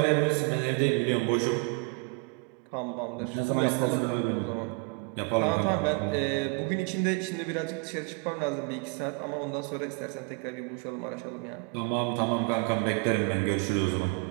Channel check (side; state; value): left; quieter; 30.9 dB